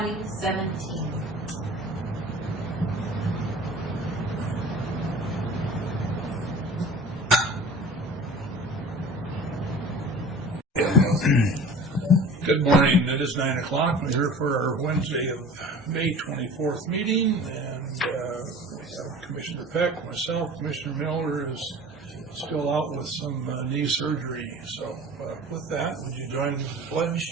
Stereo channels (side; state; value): both; normal; correlation 0.42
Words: Good morning. It is 9 o'clock. We're here for our Wednesday of May 24th meeting, and we have Commissioner Peck, myself, Commissioner Miller is still out with some knee surgery. So with that, would you join me in the